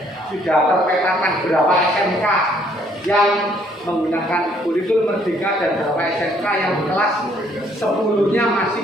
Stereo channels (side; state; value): both; normal; correlation 0.65